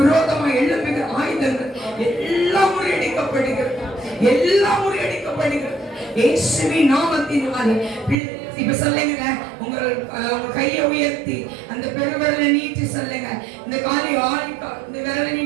எழுப்புகிற ஆயுதங்கள் எல்லாம் முறியடிக்கப்படுகிறது. எல்லாம் முறியடிக்கப்படுகிறது. இயேசுவின் நாமத்தினாலே. இப்ப சொல்லுங்க, உங்க உங்க கையை உயர்த்தி அந்த பெருவிரலை நீட்டி சொல்லுங்க. இந்த காலை இந்த விரலை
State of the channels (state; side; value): drops out; left; at 8.2 s